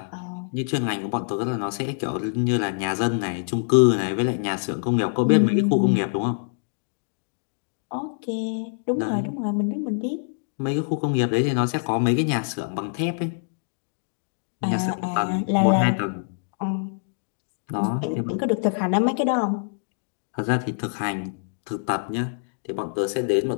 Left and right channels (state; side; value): silent; right; digital silence